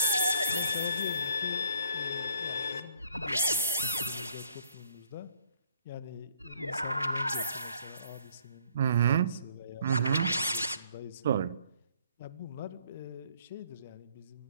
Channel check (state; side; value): inverted; both; correlation -0.63